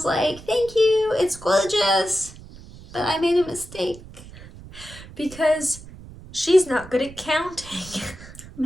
like, thank you, it's gorgeous, but I made a mistake. Because she's not good at counting.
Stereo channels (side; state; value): right; noise; rumble, 17 dB below the sound